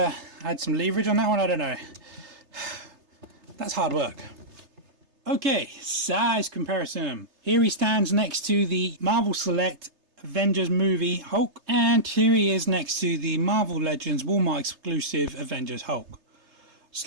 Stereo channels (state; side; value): late; left; 3.3 ms